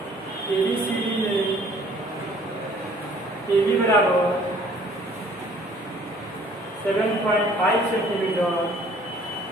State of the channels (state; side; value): normal; both; correlation 0.56